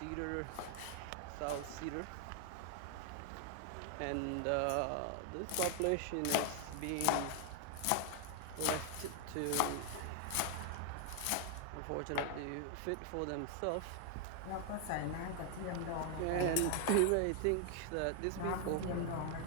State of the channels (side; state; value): both; different; correlation 0.00